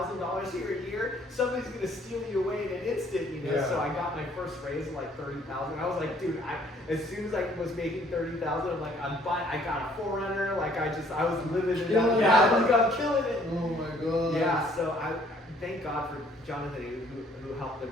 here a year. Somebody's gonna steal you away in an instant, you know. Yeah. So I got my first raise of like $30,000. I was like, dude, as soon as I was making $30,000, I'm like, I'm buying. I got a 4Runner. Like I was living it Killing up. it. Yeah, I was like, I'm killing it. Oh my god. Yeah. So I thank God for Jonathan who helped them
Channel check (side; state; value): both; normal; correlation 0.61